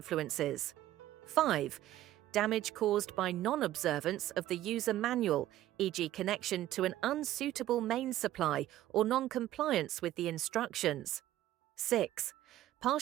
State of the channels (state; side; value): quieter; left; 13.9 dB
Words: 5. Damage caused by non-observance of the user manual, e.g. connection to an unsuitable main supply or non-compliance with the instructions. 6.